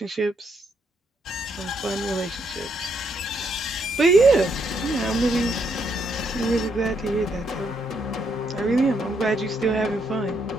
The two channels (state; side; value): normal; both; correlation 0.76